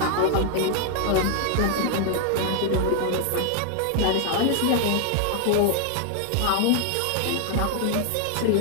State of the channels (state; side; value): different; both; correlation 0.00